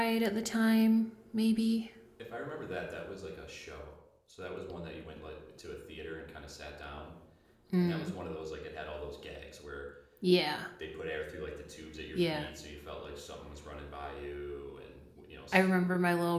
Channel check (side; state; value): both; identical; correlation 1.00